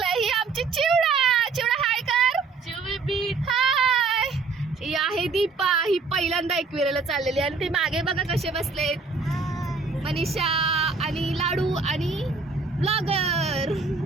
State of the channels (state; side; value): quieter; left; 4.4 dB